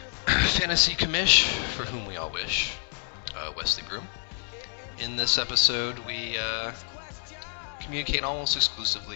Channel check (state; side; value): silent; right; 59 dB below the other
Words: fantasy commish for whom we all wish, Wesley Broom. In this episode, we communicate almost